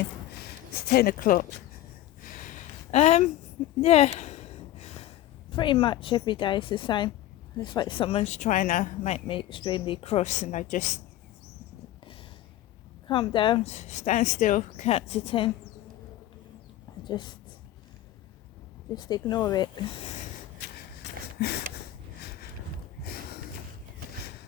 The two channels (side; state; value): right; quieter; 13.7 dB